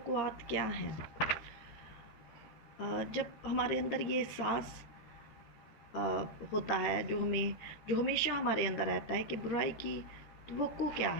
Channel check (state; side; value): late; right; 14 ms